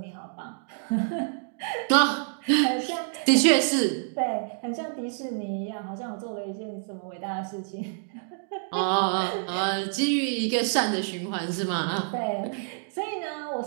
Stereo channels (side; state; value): left; silent; digital silence